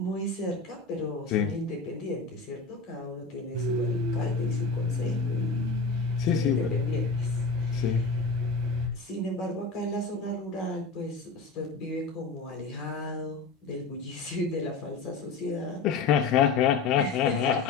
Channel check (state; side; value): quieter; right; 4.3 dB